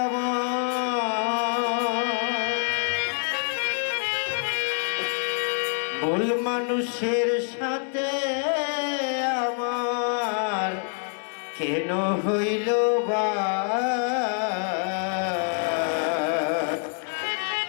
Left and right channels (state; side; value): silent; right; 61 dB below the other